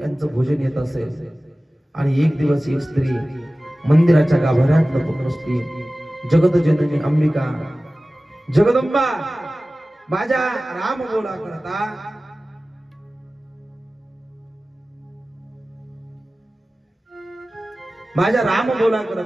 यांचं भोजन येत असेल. आणि एक दिवस एक स्त्री मंदिराच्या गाभाऱ्यात लपून बसली. जगत जननी अंबिका जगदंबा माझ्या राम बोला करता माझ्या राम बोला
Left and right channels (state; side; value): normal; both; correlation 0.97